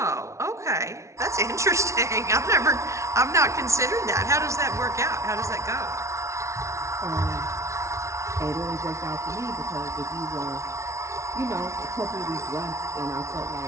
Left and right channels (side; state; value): left; late; 0.14 ms